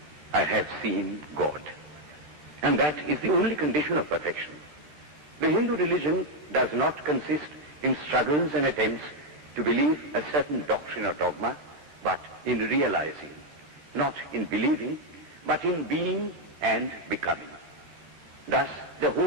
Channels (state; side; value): late; left; 14 ms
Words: I have seen God. And that is the only condition of perfection. The Hindu religion does not consist in struggles and attempts to believe a certain doctrine or dogma, but in realizing, not in believing, but in being and becoming. Thus, the